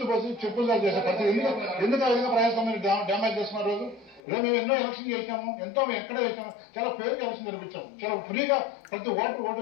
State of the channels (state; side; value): drops out; right; at 4.2 s